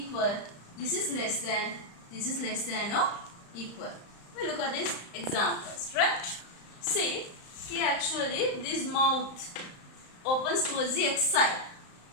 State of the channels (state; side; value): late; right; 34 ms